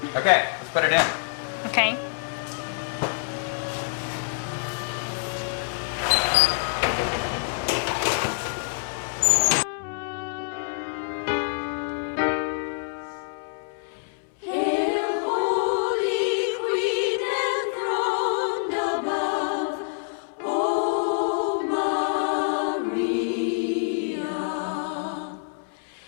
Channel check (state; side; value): silent; right; 61 dB below the other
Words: Okay, let's put it in. Okay.